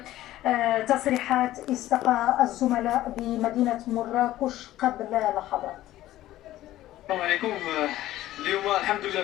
تصريحات استقى الزملاء بمدينة مراكش قبل لحظات. السلام عليكم. اليوم الحمد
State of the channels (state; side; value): quieter; right; 14.7 dB